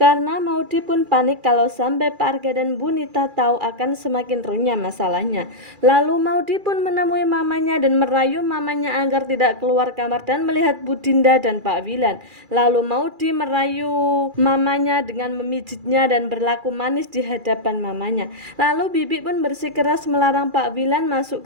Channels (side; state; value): left; late; 2.4 ms